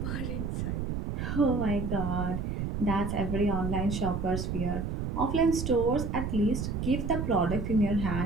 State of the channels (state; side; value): noise; right; rumble, 2 dB below the sound